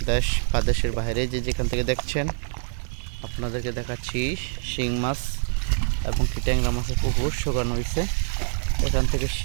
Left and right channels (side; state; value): left; silent; 62 dB below the other